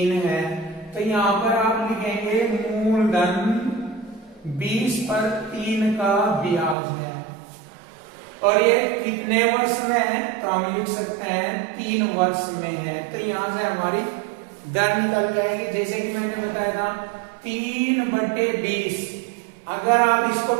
है। तो यहां पर आप लिखेंगे मूलधन 20 पर 3 का ब्याज है, और ये कितने वर्ष में है, तो हम लिख सकते हैं 3 वर्ष में है। तो यहां से हमारी दर निकल जाएगी, जैसे कि मैंने बताया था 3/20। अगर आप इसको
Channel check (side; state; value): left; drops out; at 6.8 s